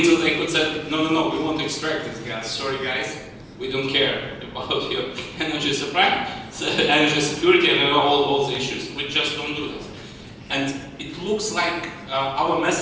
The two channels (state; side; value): identical; both; correlation 1.00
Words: they could say, no, we want to extract this gas. Sorry guys, we don't care about your energy supply, energy security, and all the issues. We just don't do this. And it looks like our